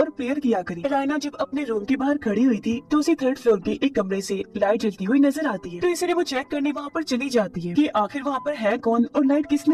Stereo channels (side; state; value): both; identical; correlation 1.00